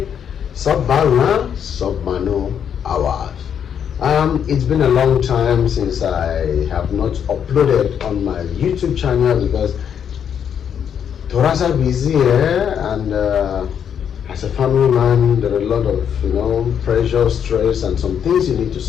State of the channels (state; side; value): quieter; right; 8.3 dB